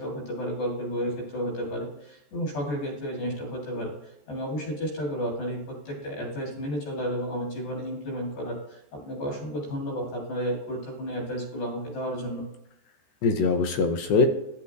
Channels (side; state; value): right; late; 14 ms